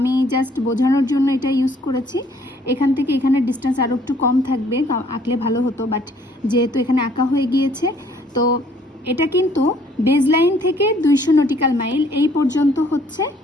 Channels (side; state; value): both; normal; correlation 0.61